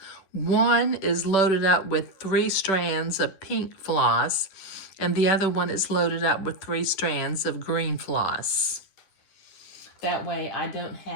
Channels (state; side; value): late; right; 11 ms